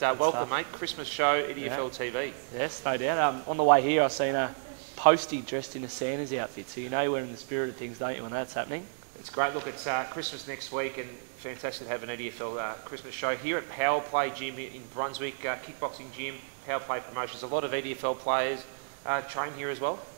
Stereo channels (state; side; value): silent; left; digital silence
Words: welcome, mate. Christmas show, EDFL TV. Yes, no doubt. On the way here, I've seen a postie dressed in a Santa's outfit, so you know we're in the spirit of things, don't you, when that's happening? It's great. Look, it's Christmas next week, and fantastic to have an EDFL Christmas show here at Power Play Gym in Brunswick, kickboxing gym, Power Play Promotions. A lot of EDFL players train here as well.